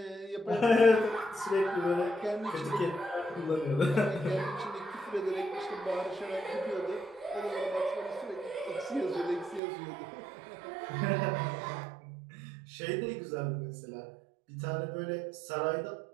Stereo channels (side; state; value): left; drops out; at 9.6 s